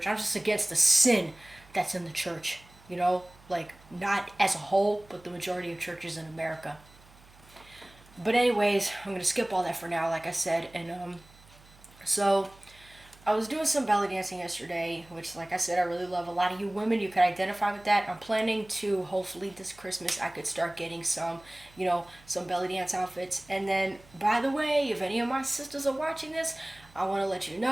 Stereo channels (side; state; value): right; noise; hum, 25 dB below the sound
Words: I'm just against the sin that's in the church. Like not as a whole, but the majority of churches in America. But anyways, I'm gonna skip all that for now, like I said, and so I was doing some belly dancing yesterday, which, like I said, I really love. A lot of you women, you can identify with that. I'm planning to, hopefully this Christmas, I could start getting some, some belly dance outfits. And then, by the way, if any of my sisters are watching this, I want to let you